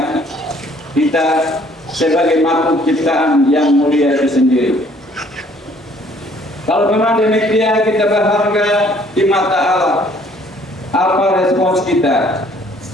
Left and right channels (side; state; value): both; normal; correlation 0.60